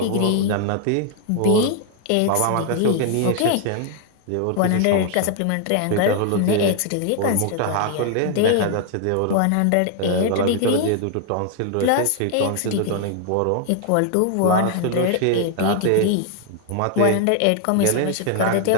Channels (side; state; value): both; different; correlation 0.00